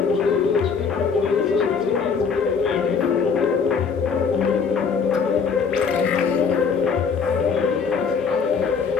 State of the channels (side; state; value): right; quieter; 5.7 dB